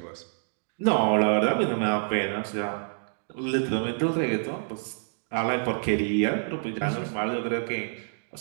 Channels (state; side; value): silent; left; digital silence